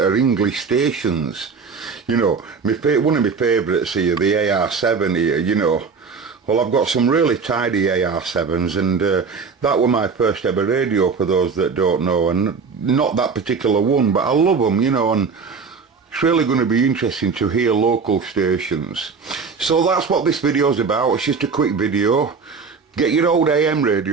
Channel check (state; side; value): quieter; left; 5.2 dB